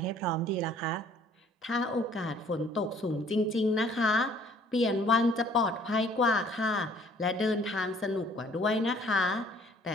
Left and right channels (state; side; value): normal; both; correlation 0.58